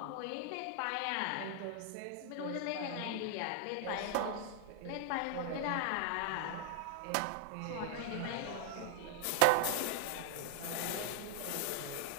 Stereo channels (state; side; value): different; both; correlation 0.00